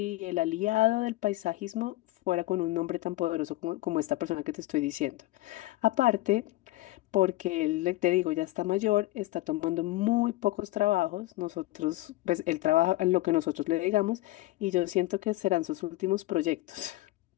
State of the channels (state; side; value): quieter; right; 18.1 dB